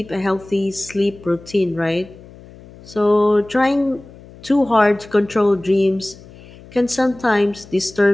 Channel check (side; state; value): left; noise; hum, 21 dB below the sound